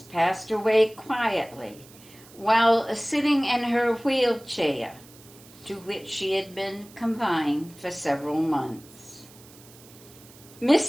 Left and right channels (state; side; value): noise; right; hiss, 23 dB below the sound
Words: passed away quietly while sitting in her wheelchair, to which she had been confined for several months.